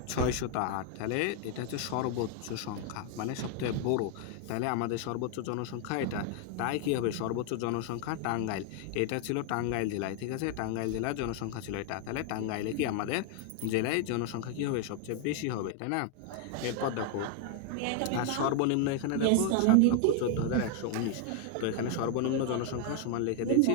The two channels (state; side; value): different; both; correlation 0.00